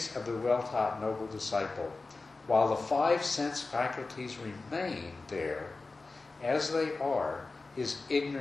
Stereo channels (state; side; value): quieter; right; 3.6 dB